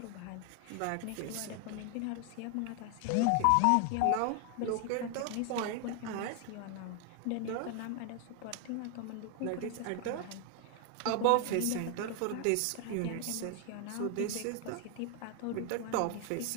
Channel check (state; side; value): different; both; correlation 0.00